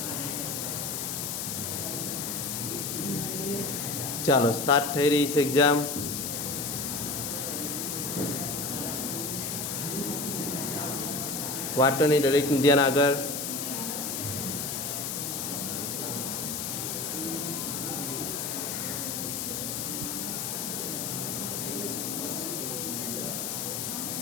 ચાલો, સ્ટાર્ટ થઈ રહી છે એક્ઝામ. વાટોની દરેકનું ધ્યાન આગળ.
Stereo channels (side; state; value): left; noise; hiss, 3 dB below the sound